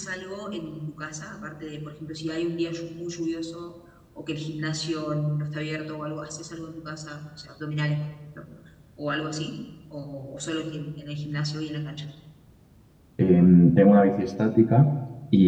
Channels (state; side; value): identical; both; correlation 1.00